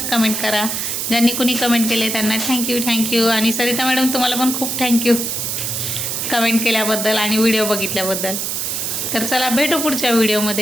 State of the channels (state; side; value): noise; right; hiss, 2 dB below the sound